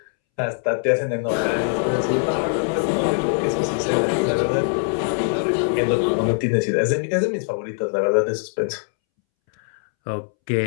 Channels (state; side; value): silent; right; 64 dB below the other